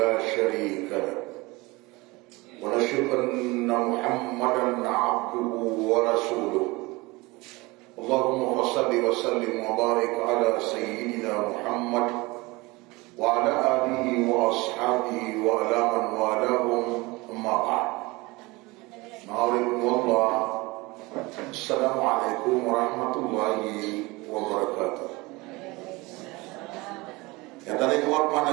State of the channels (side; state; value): left; quieter; 23.2 dB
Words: شريك له ونشهد أن محمدا عبده ورسوله. اللهم صل وسلم وبارك على سيدنا محمد وعلى آله وأصحابه وعلى من والاهم. أما بعد. Ma'alaikumullah. Assalamualaikum warahmatullahi wabarakatuh. Yang tadi kuat